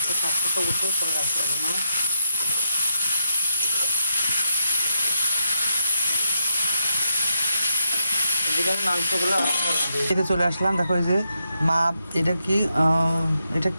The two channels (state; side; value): inverted; both; correlation -0.81